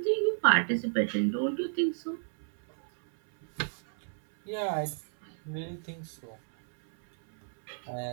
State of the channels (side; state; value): left; silent; 57 dB below the other